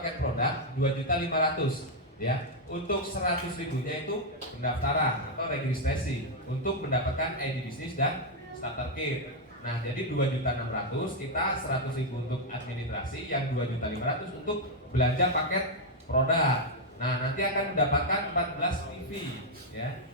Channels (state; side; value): normal; both; correlation -0.01